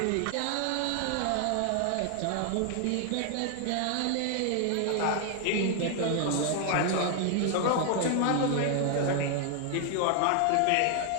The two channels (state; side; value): different; both; correlation 0.00